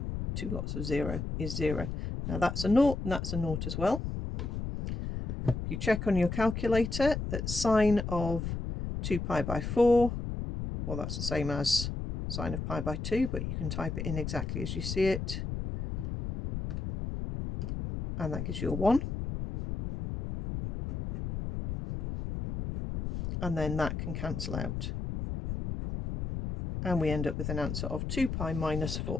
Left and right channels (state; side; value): noise; left; rumble, 4 dB below the sound